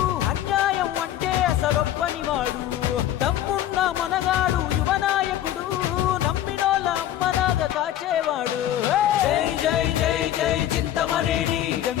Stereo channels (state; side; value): quieter; right; 12.1 dB